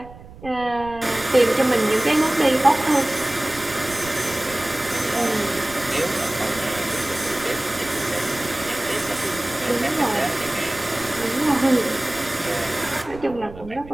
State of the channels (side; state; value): right; noise; rumble, 17 dB below the sound